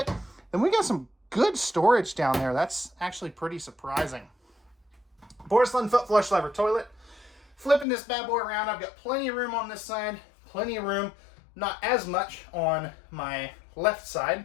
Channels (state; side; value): drops out; right; at 7.9 s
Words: Then we got some good storage down there. That's actually pretty surprising. Porcelain foot flush lever toilet. Flipping this bad boy around, I've got plenty of room on this side, plenty of room, not as much on my left